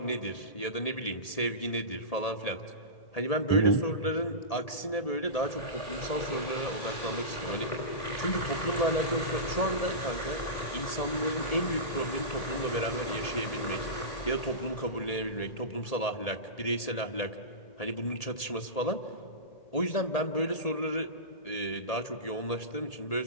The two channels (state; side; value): late; right; 1.8 ms